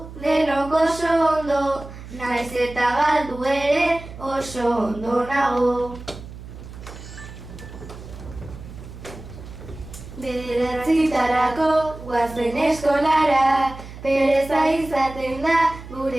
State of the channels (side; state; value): right; noise; hum, 14 dB below the sound